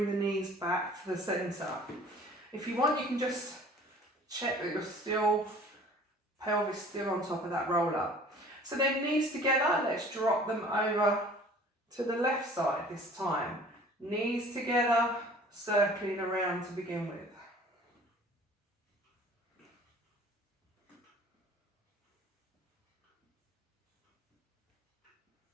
the knees back to the centre. If you want, you can just check that your pelvis still on top of that roller. So then knees together, let's drop them over to the left side this time. Knees together, circling around to begin with.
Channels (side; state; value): both; normal; correlation 0.49